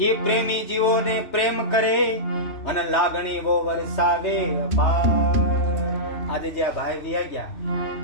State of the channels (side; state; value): right; late; 3.2 ms